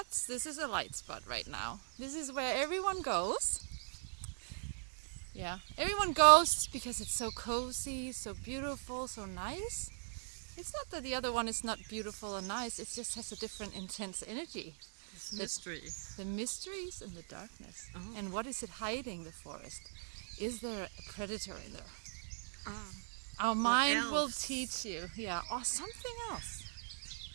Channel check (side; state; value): left; silent; digital silence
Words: This is a light spot right now. This is where everyone goes. Yeah, everyone goes because it's so cozy, so beautiful, so nice. It's not that the other one is not beautiful or nice, it just has a different intense energy. It's mystery. The mysteries and the darkness. Oh. And what is it hiding, the forest? Is there a predator in there? Our mind will teach you. Yeah, or something else.